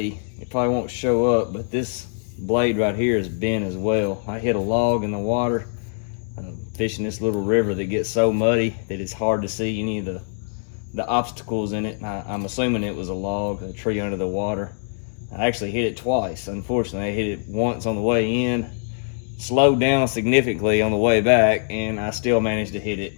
probably won't show up, but this blade right here is bent as well. I hit a log in the water fishing this little river that gets so muddy that it's hard to see any of the obstacles in it. I'm assuming it was a log, a tree under the water. I actually hit it twice. Unfortunately, I hit it once on the way in, slowed down significantly on the way back, and I still managed to hit it.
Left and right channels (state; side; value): silent; right; digital silence